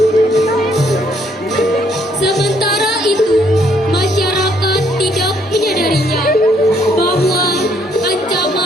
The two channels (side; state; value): both; normal; correlation 0.68